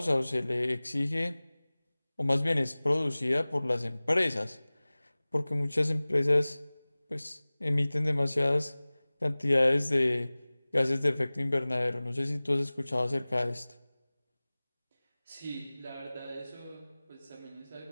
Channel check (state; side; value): inverted; both; correlation -0.99